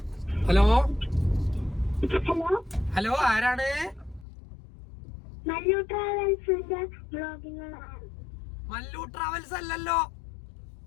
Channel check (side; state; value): right; drops out; at 4.2 s